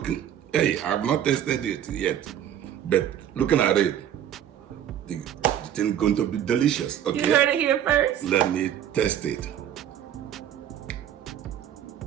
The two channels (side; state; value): left; quieter; 10.4 dB